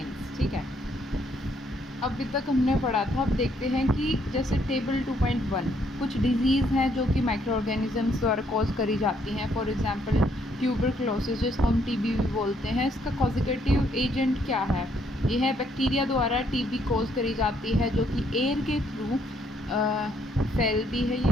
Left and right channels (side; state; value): both; normal; correlation 0.70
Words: ठीक है, अभी तक हमने पढ़ा था। अब देखते हैं कि जैसे टेबल 2.1 कुछ डिजीज़ हैं जो कि माइक्रो ऑर्गेनिजम्स द्वारा कॉज करी जाती हैं। फॉर एग्जांपल ट्यूबरक्लोसिस, जिसको हम टीबी भी बोलते हैं, इसका कॉजिगेटिव एजेंट क्या है? ये है बैक्टीरिया द्वारा टीबी कॉज करी जाती है, जो कि एयर के थ्रू फैलती है